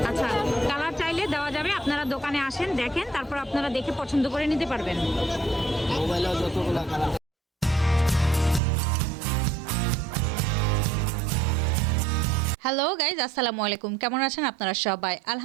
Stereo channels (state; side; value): drops out; left; at 8.6 s